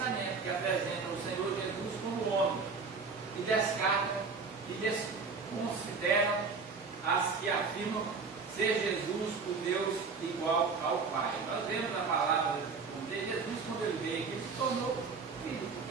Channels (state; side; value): quieter; left; 4.8 dB